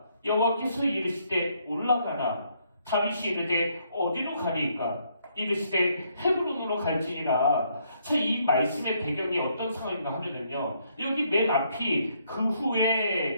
여호와께서 이르시되 올라가라. 다윗이 이르되 어디로 가리이까 이르시되 헤브론으로 갈지니라. 자, 이 말씀의 배경이 어떤 상황인가 하면은요. 여기 맨 앞이 그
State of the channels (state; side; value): inverted; both; correlation -0.71